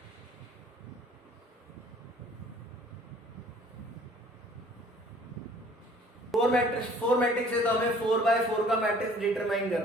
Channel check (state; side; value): normal; both; correlation 0.54